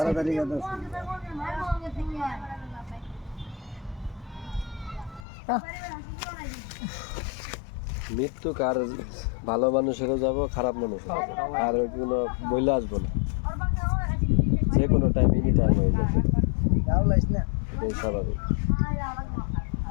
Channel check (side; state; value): right; drops out; at 5.2 s